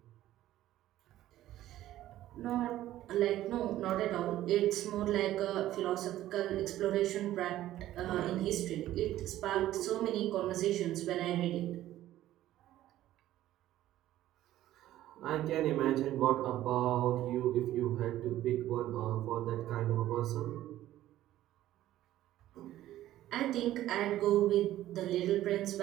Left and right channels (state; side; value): quieter; left; 13.9 dB